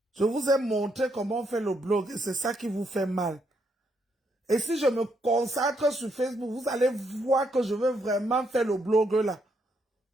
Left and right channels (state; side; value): normal; both; correlation 0.76